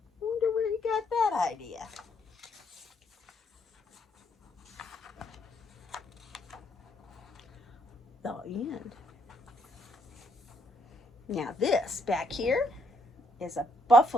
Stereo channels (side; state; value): both; normal; correlation 0.73